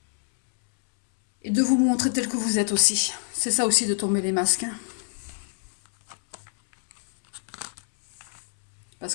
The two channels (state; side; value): silent; right; 61 dB below the other